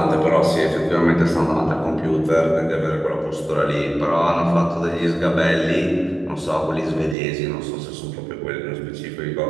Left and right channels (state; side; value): drops out; left; at 7.2 s